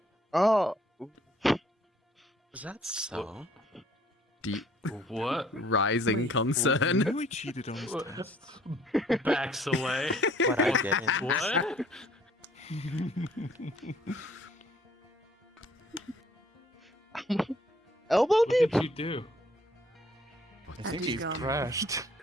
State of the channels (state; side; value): normal; both; correlation 0.59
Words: Oh, Is that so? Deep What? rising concern. We cheated on his What? test. Backs away. But I didn't. What? elbow What deep? did you do? I think he's he's gone. crashed.